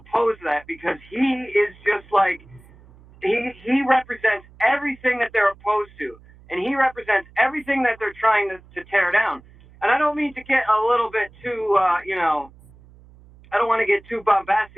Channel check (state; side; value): noise; right; hum, 25 dB below the sound